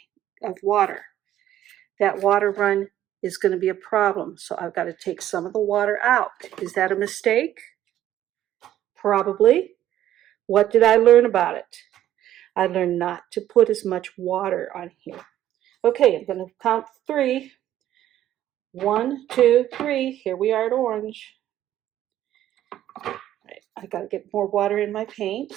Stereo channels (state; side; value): quieter; left; 12.4 dB